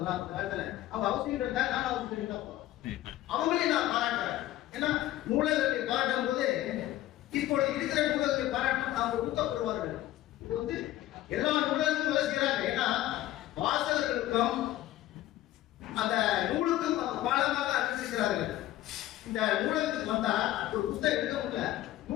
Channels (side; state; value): right; quieter; 14.7 dB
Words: அந்த காலத்துல. அவங்க அவசியம் இருந்தா நான் அவசியம் தான் அவங்களையும் நான் பாராட்டுறேன். ஏன்னா நூலகத்தை பாராட்டும் போது இப்போ இருக்கிற நூலகத்தை பாராட்டும் அவங்க ஊக்கப்படுவார்கள். இது வந்து எல்லா நூலகங்களும் வேலை செய்யறாங்க. ஏன்னா வாசகர்களுக்கும் அந்த நூலுக்கும் பாலமாக அறிவிக்கிறார்கள். இந்த நூலகத்துக்கு வந்தா ஒரு புத்தகம் எடுக்க முடியல,